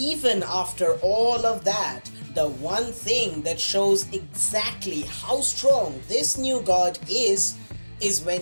after all of that, the one thing that shows exactly how strong this new god is when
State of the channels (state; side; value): inverted; both; correlation -1.00